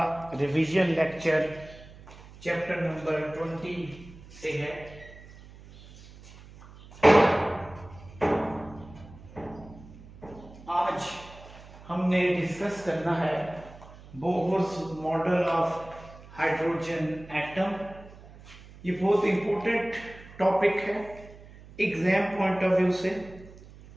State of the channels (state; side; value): noise; right; hum, 19 dB below the sound